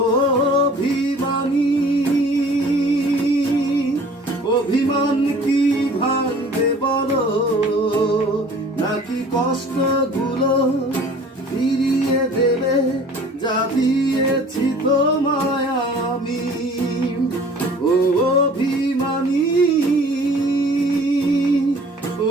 অভিমানী অভিমান কি ভাঙবে বলো, নাকি কষ্টগুলো ফিরিয়ে দেবে যা দিয়েছি তোমায় আমি। ও অভিমানী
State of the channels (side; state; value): both; normal; correlation 0.49